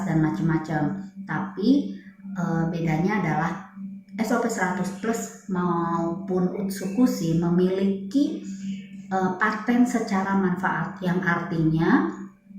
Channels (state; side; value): identical; both; correlation 1.00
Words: dan macam-macam. Tapi bedanya adalah SOP 100 Plus maupun Utsukushi memiliki paten secara manfaat, yang artinya